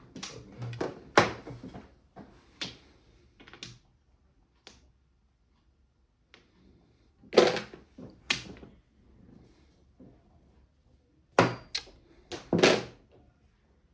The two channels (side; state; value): both; identical; correlation 1.00